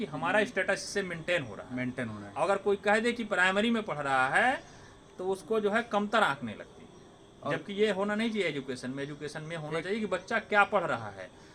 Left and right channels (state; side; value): identical; both; correlation 1.00